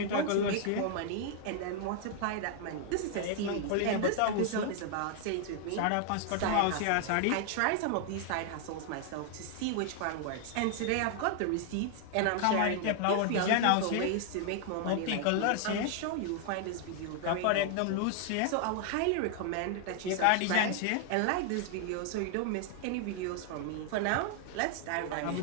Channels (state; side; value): different; both; correlation 0.00